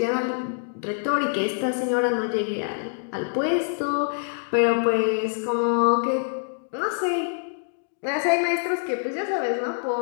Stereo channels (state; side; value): silent; right; digital silence